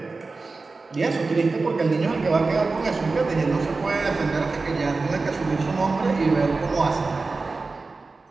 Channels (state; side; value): quieter; left; 3.8 dB